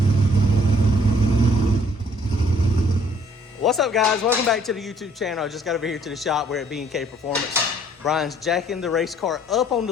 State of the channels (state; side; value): normal; both; correlation 0.61